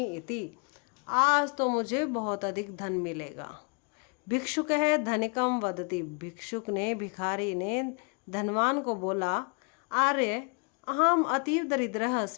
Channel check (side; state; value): right; quieter; 36.6 dB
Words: इति, आज तो मुझे बहुत अधिक धन मिलेगा। भिक्षुकः धनिकम वदति, भिक्षुक ने भिखारी ने धनवान को बोला, आर्य अहम अतीव दरिद्रः